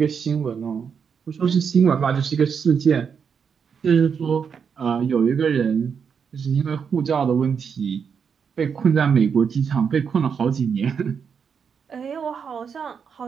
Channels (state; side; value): quieter; left; 6.6 dB